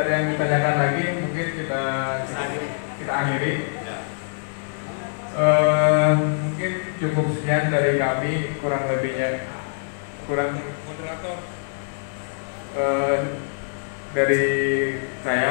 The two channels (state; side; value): silent; right; digital silence